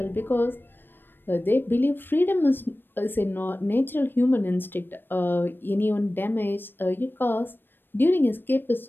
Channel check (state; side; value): late; right; 0.096 ms